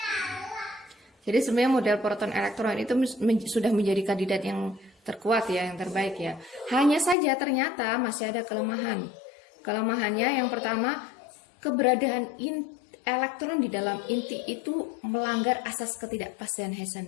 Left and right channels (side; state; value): right; drops out; at 7.2 s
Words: Jadi sebenarnya model proton elektron itu sudah menjadi kandidat yang terkuat ya, yang terbaik ya. Hanya saja ternyata masih ada kelemahan. Kelemahannya yang pertama, keberadaan elektron di dalam inti itu melanggar asas ketidakpastian